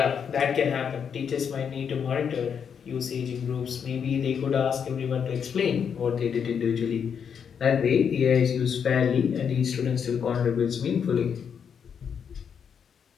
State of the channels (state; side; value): quieter; right; 7.3 dB